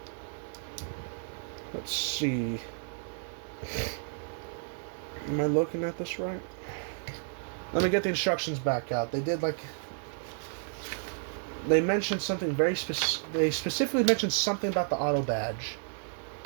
Let's see. Am I looking at this right? Let me get the instructions back out. They mentioned something very specific. They specifically mentioned something about the auto badge.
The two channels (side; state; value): left; silent; digital silence